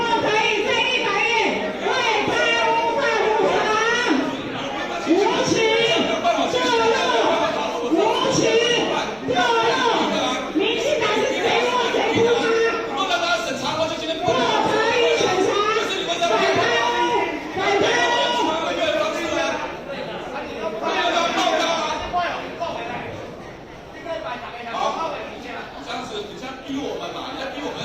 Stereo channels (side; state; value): both; identical; correlation 1.00